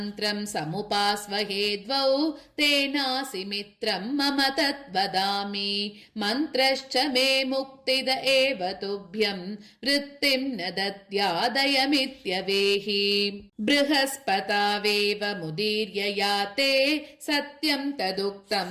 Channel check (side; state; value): both; identical; correlation 1.00